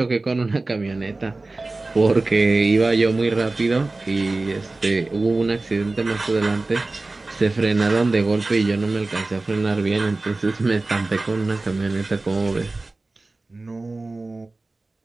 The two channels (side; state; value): left; quieter; 3.2 dB